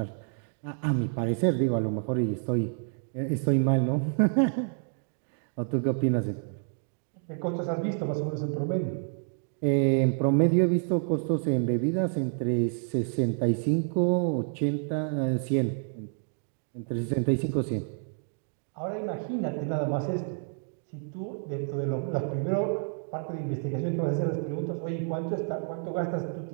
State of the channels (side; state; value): left; silent; 59 dB below the other